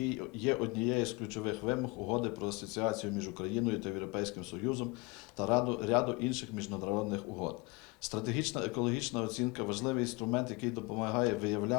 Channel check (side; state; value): right; quieter; 25.8 dB